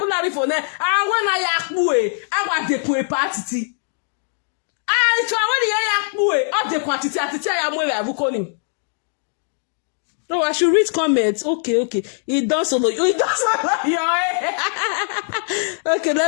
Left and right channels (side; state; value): right; silent; digital silence